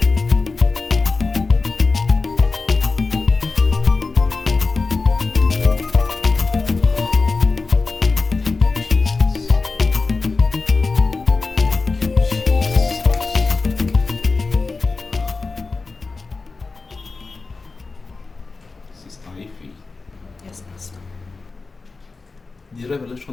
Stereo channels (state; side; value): quieter; right; 4.0 dB